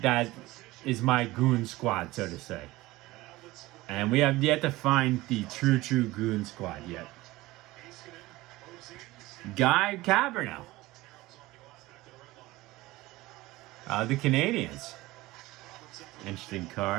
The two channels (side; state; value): left; quieter; 19.1 dB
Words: is my goon squad, so to say. And we have yet to find the true goon squad yet. Guy Cabernet. The Canadians. Interesting